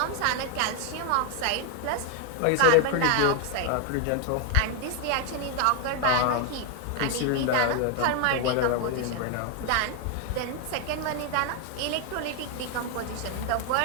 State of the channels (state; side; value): different; both; correlation 0.00